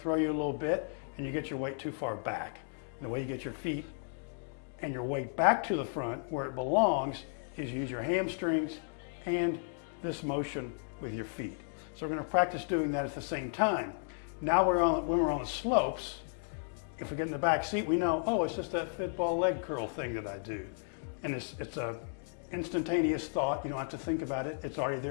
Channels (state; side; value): silent; right; digital silence